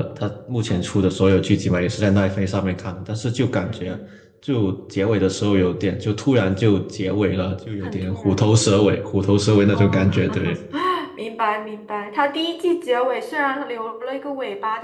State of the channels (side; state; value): both; identical; correlation 1.00